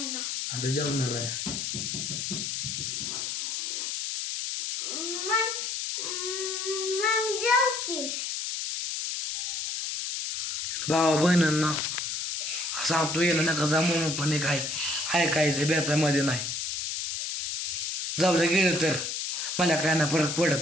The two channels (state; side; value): noise; left; hiss, 3 dB below the sound